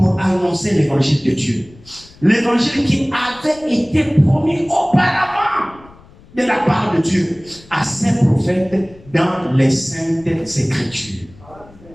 annoncer l'évangile de Dieu. L'évangile qui avait été promis auparavant de la part de Dieu à ses prophètes dans les saintes écritures.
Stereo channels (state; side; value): noise; left; rumble, 24 dB below the sound